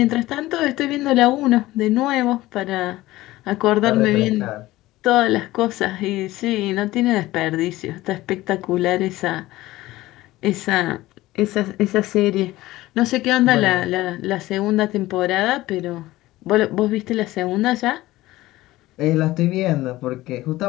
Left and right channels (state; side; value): quieter; right; 17.4 dB